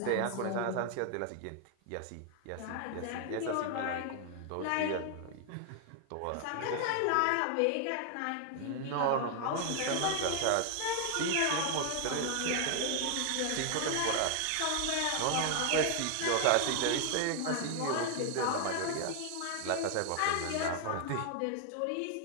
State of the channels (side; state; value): both; different; correlation 0.00